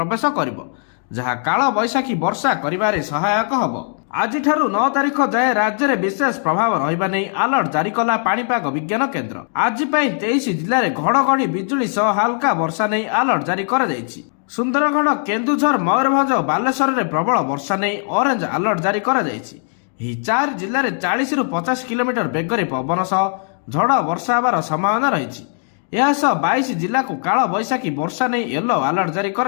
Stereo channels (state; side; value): silent; right; 55 dB below the other